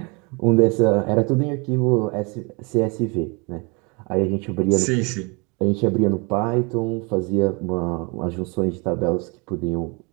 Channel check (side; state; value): left; quieter; 30.7 dB